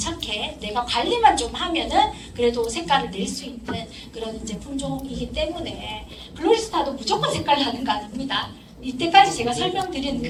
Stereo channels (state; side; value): identical; both; correlation 1.00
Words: 내가 관리만 좀 하면은 그래도 색깔을 낼 수 있는 그런 이제 품종이기 때문에 글로리스탄도 무조건 색깔 나는 거 아닙니다. 이때까지 제가 설명드린